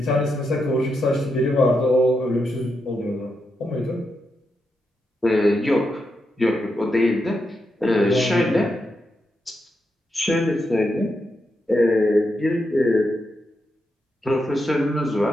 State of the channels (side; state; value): both; normal; correlation 0.84